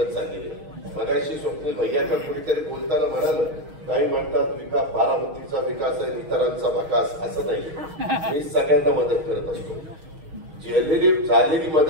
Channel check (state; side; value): late; left; 6.4 ms